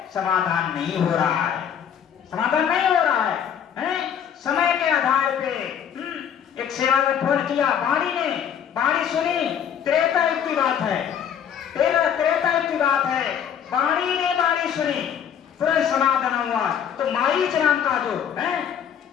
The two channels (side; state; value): right; quieter; 8.6 dB